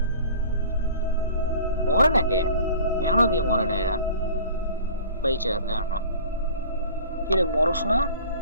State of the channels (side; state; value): both; inverted; correlation -0.45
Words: মরে নাকি এখনো দিয়ে মরে না এরা বেঁচে আছে এখনো। কিরে মরস না?